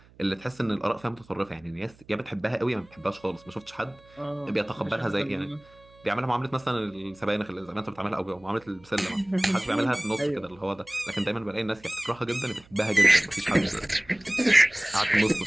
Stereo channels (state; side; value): noise; right; hum, 27 dB below the sound